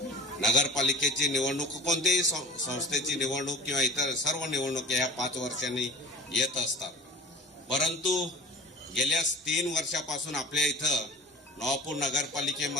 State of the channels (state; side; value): normal; both; correlation 0.40